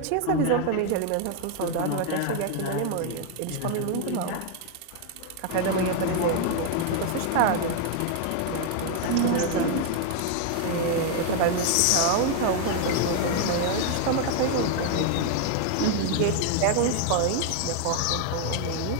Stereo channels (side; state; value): both; different; correlation 0.00